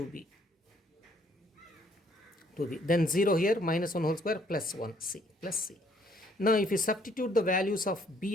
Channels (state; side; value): normal; both; correlation 0.65